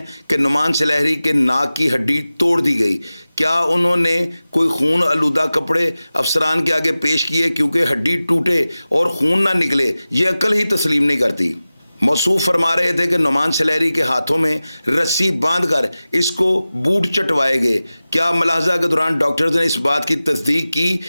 کہ نعمان سلیحری کے ناک کی ہڈی توڑ دی گئی، کیا انہوں نے کوئی خون آلودہ کپڑے افسران کے آگے پیش کیے کیونکہ ہڈی ٹوٹے اور خون نہ نکلے؟ یہ عقل ہی تسلیم نہیں کرتی۔ موصوف فرما رہے تھے کہ نعمان سلیحری کے ہاتھوں میں رسی باندھ کر اس کو بوٹ چٹوائے گئے، کیا ملاحظہ کے دوران ڈاکٹرز نے اس بات کی تصدیق کی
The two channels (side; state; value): both; inverted; correlation -0.96